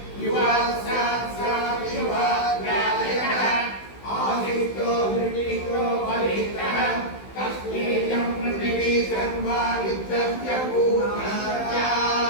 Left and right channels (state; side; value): late; right; 16 ms